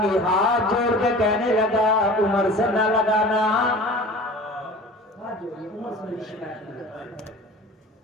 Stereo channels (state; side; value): normal; both; correlation 0.41